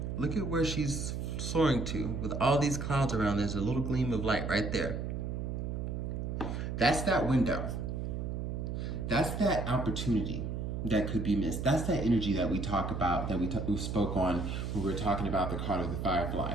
look at where she's soaring to. With all these clouds around, there's a little gleam of light right there. That's that window. That's that opportunity that could be missed. That's that energy that we talk about, that we spoke on when we were talking about the card of the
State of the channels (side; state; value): right; noise; hum, 3 dB below the sound